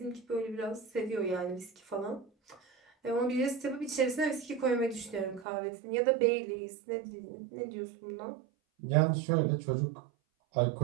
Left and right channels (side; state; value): left; drops out; at 5.5 s